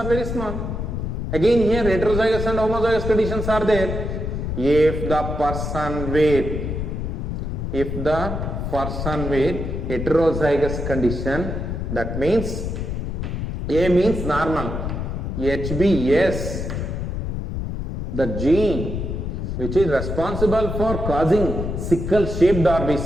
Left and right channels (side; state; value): left; noise; rumble, 4 dB below the sound